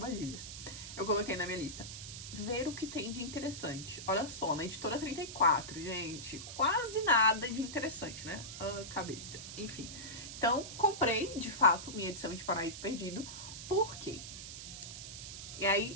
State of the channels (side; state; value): right; noise; hiss, 10 dB below the sound